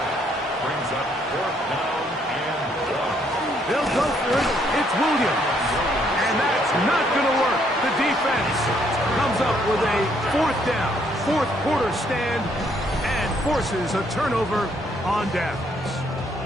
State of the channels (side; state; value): both; normal; correlation 0.69